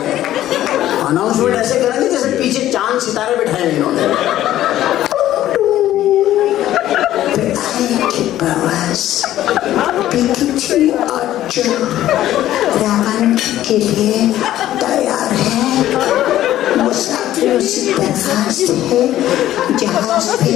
अनाउंसमेंट ऐसे करेंगे जैसे पीछे चांद सितारे बिठाए इन्होंने। के लिए तैयार है, मुसाफिरों से दरखास्त है जहाज पे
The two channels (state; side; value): quieter; right; 13.2 dB